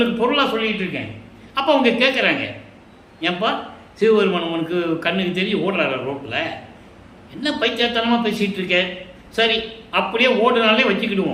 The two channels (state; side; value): identical; both; correlation 1.00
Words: பொருளாக சொல்லிக்கிட்டு இருக்கேன். அப்போ அவங்க கேட்குறாங்க, ஏன்பா சிவபெருமான் உனக்கு கண்ணுக்கு தெரிஞ்சு ஓடுறாரு ரோட்டில், என்ன பைத்தியத்தனமாக பேசிகிட்டு இருக்க. சரி, அப்படியே ஓடுனாலே